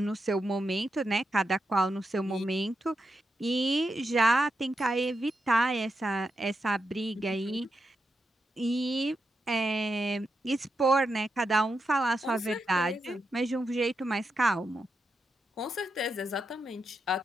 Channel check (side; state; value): both; normal; correlation 0.86